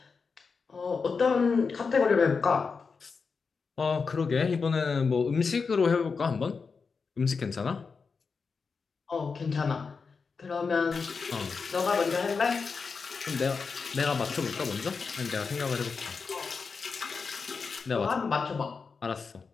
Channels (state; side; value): quieter; right; 5.0 dB